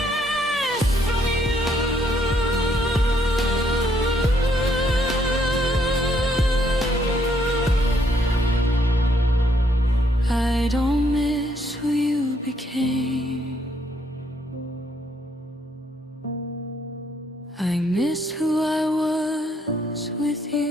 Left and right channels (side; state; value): both; normal; correlation 0.70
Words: from you. I don't miss who you became. I miss who I was with